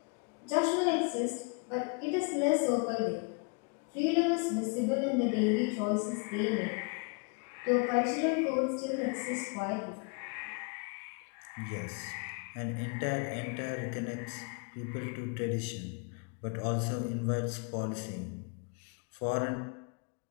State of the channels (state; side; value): quieter; right; 33.8 dB